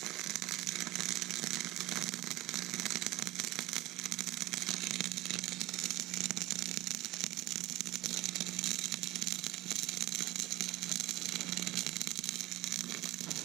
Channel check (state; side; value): quieter; left; 17.7 dB